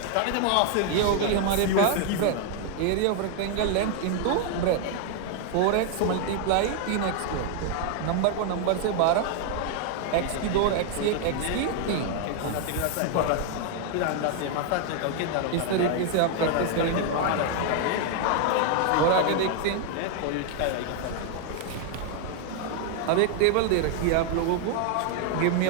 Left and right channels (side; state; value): both; different; correlation 0.00